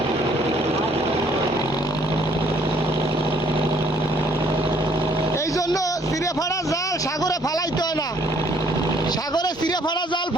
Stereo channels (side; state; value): both; normal; correlation 0.63